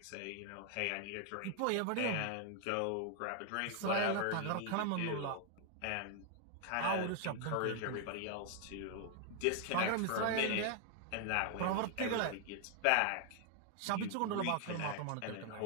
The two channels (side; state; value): both; different; correlation 0.00